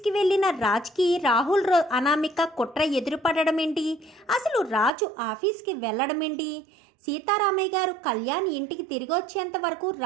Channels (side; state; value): left; drops out; at 4.9 s